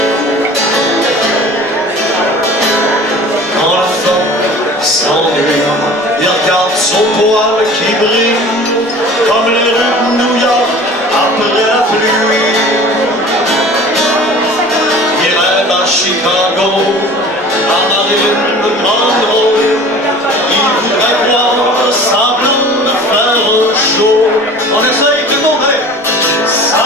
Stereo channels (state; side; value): normal; both; correlation 0.43